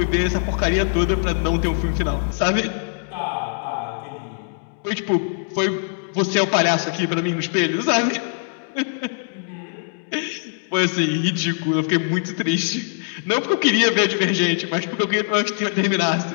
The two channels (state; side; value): silent; right; digital silence